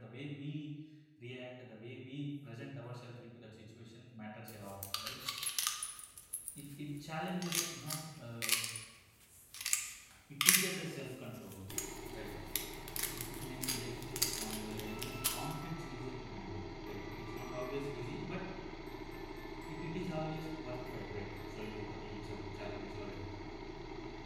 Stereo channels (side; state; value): both; identical; correlation 1.00